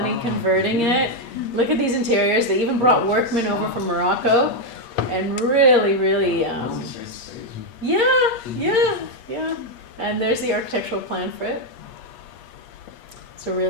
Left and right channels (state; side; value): late; right; 8.4 ms